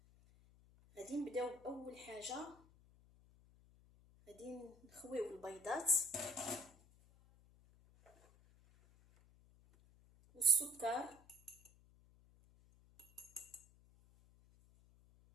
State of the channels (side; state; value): left; noise; hum, 25 dB below the sound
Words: غادي نبداو باول حاجه، غادي نخويو البيضات والسكر